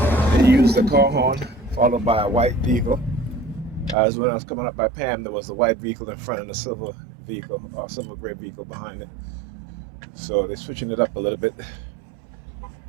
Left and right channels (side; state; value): left; drops out; at 4.0 s